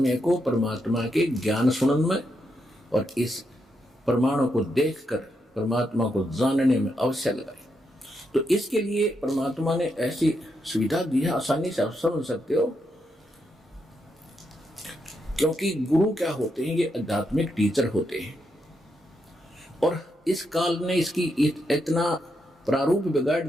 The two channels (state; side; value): normal; both; correlation 0.81